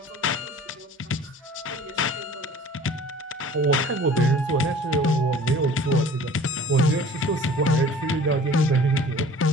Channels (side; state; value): both; normal; correlation 0.46